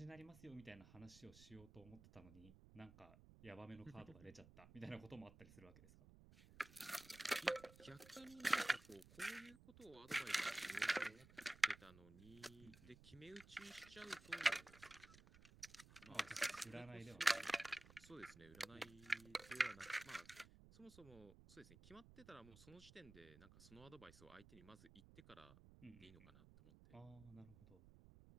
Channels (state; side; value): noise; right; rumble, 19 dB below the sound